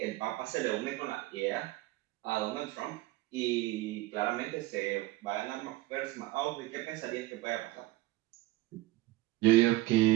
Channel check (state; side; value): quieter; left; 17.9 dB